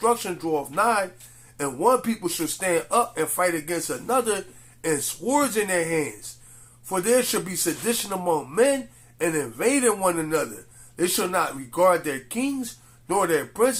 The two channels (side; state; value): both; identical; correlation 1.00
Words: draweth nigh, and one people shall stand up and fight against another, and swords in their hands. For there shall be sedition among men, and invading one another. They shall not regard their kings, nor their